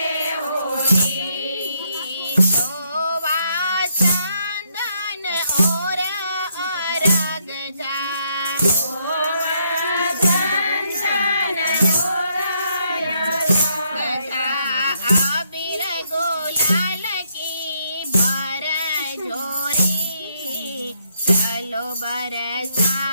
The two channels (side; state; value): both; inverted; correlation -0.74